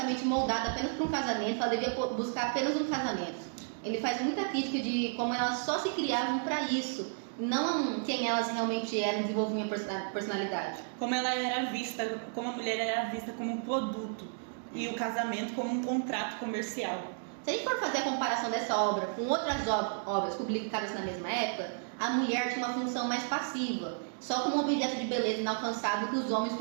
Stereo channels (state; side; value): silent; left; digital silence